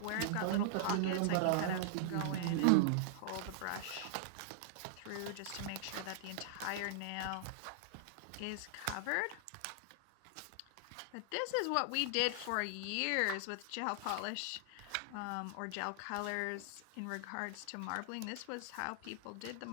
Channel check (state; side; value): different; both; correlation -0.01